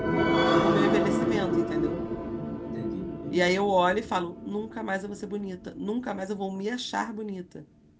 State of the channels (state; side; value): identical; both; correlation 1.00